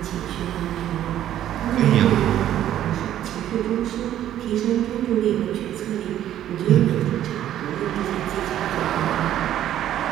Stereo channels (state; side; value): quieter; left; 11.8 dB